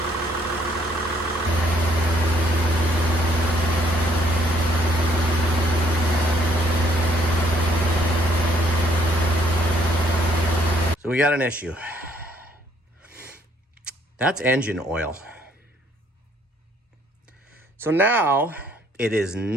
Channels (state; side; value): normal; both; correlation 0.66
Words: So we got an issue. That's engine oil. So now it is